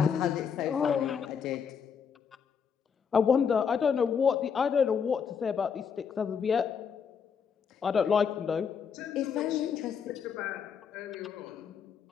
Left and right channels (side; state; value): right; quieter; 6.8 dB